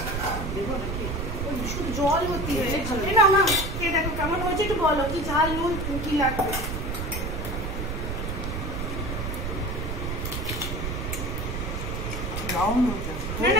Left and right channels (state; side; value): noise; right; rumble, 4 dB below the sound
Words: শুধু জল ভর্তি হয়ে না। না কে দেখো কেমন হয়েছে, একটু বলো কি ঝাল নুন কি লাগবে। না